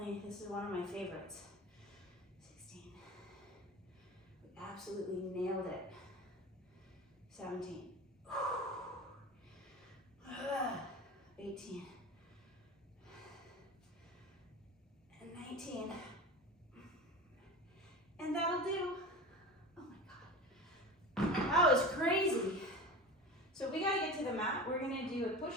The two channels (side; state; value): both; normal; correlation 0.31